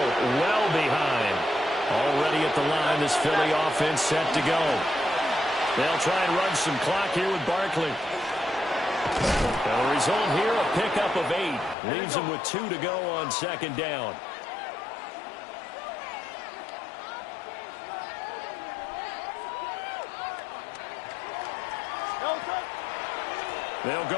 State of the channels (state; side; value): drops out; right; at 11.8 s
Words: behind. Already at the line, this Philly offense set to go. They'll try and run some clock here with Barkley. Now the result here, a pickup of 8. Leaves them with 2 to go on 2nd down. They'll